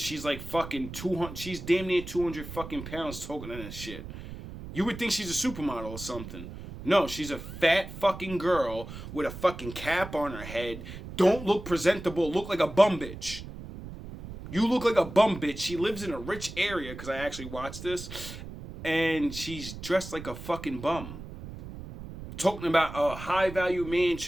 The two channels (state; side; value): noise; right; rumble, 11 dB below the sound